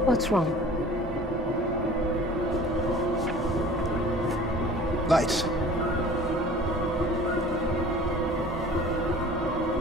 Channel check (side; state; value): both; normal; correlation 0.45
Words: What's wrong? Lights.